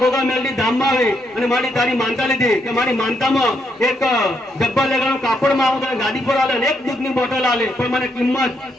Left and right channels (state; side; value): normal; both; correlation 0.77